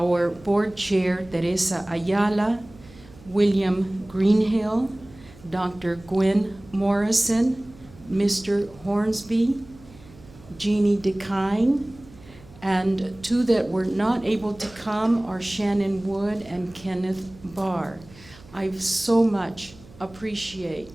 board chair, Teresa Ayala, William Greenhill, Dr. Gwen Morrison, Mr. Hornsby, Jeannie DeKine, and two that were not able to come are Shannon Wood and Kenneth Barr. I so much appreciate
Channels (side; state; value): right; noise; hum, 23 dB below the sound